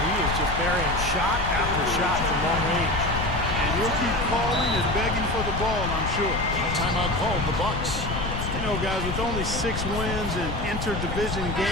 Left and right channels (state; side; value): noise; left; rumble, 4 dB below the sound